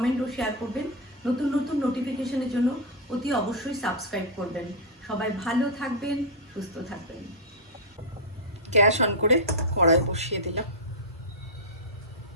ও শেয়ার করবেন। নতুন নতুন নোটিফিকেশনের জন্য অতি অবশ্যই সাবস্ক্রাইব করবেন। সবাই ভালো থাকবেন, সুস্থ থাকবেন। গ্যাস অন করে কড়াই বসিয়ে দিলাম।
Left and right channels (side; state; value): both; normal; correlation -0.03